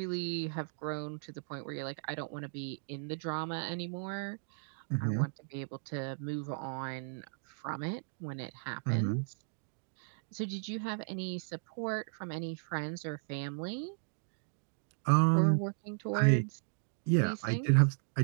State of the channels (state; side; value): silent; left; digital silence